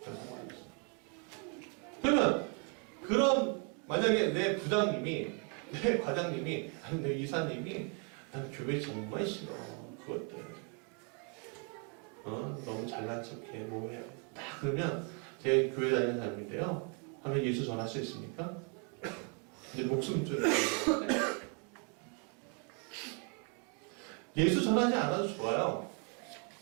그러면 그런 만약에 내 부장님이 내 과장님이 아니 내 이사님이 난 교회 정말 싫어 그것들 너무 잘난 척해 뭐해 딱 그러면 제 교회 다니는 사람인데요 하면 예수 전할 수 있습니까? 이제 목숨 줄 예수 전하지 않아도 좋아요.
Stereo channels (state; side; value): quieter; left; 37.2 dB